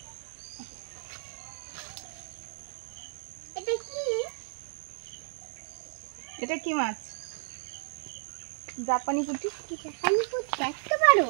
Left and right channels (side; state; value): left; silent; digital silence